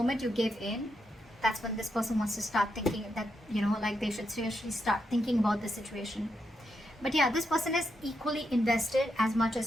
you give in, that's when this person wants to start thinking that, like they should seriously start thinking about the situation. But yeah, this person is equally invested as much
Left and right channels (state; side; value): normal; both; correlation 0.83